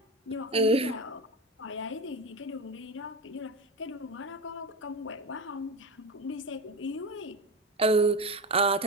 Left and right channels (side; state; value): both; normal; correlation 0.22